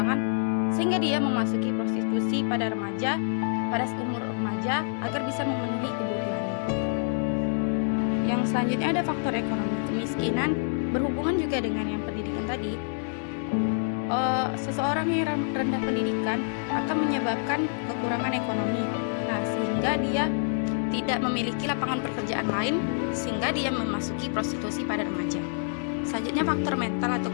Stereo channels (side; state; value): right; silent; digital silence